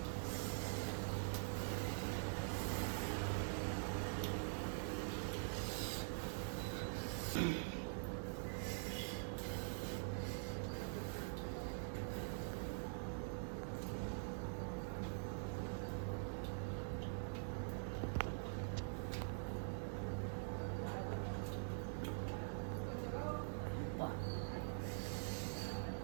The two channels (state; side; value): silent; left; digital silence